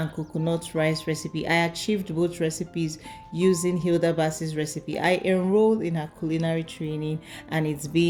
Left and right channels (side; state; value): both; identical; correlation 1.00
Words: coconut rice recipe. I achieved both recipes using Hilda Bass's recipe. I enrolled in her culinary training and it's